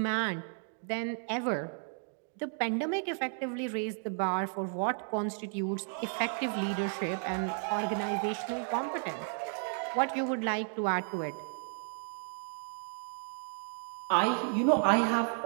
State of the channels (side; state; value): left; silent; 56 dB below the other